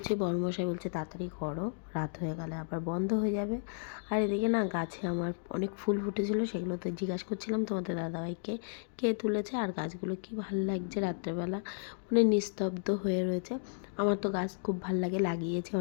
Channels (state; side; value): silent; right; digital silence